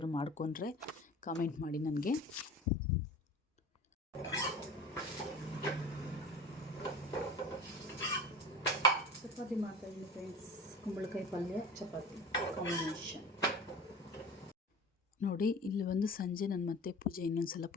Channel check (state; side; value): normal; both; correlation 0.37